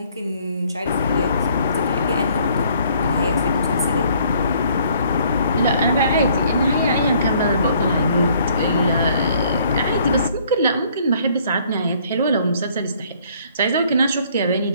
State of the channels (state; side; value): inverted; both; correlation -0.61